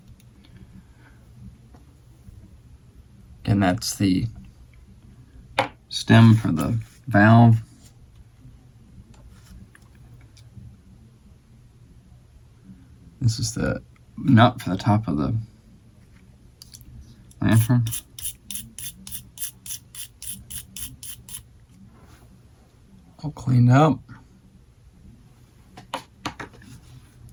And that's the stem for the valve. This is the nut for the top of the lantern. All cleaned up.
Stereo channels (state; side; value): identical; both; correlation 1.00